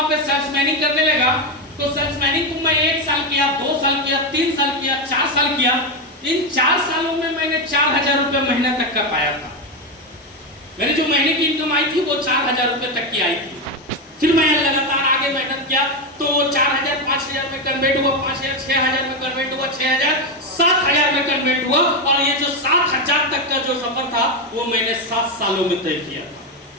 पे सेल्समैनिंग करने लगा तो सेल्समैनिंग को मैं 1 साल किया, 2 साल किया, 3 साल किया, 4 साल किया। इन 4 सालों में मैंने 4000 रुपये महीने तक का पाया था। मेरी जो महीने की इनकम आई थी वो 4000 रुपये तक की आई थी। फिर मैं लगातार आगे मेहनत किया तो 4000 5000 में कन्वर्ट हुआ, 5000 6000 में कन्वर्ट हुआ, 6000 7000 में कन्वर्ट हुआ। और ये जो 7000 तक का जो सफर था वो मैंने 7 सालों में तय किया था।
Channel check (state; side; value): normal; both; correlation 0.10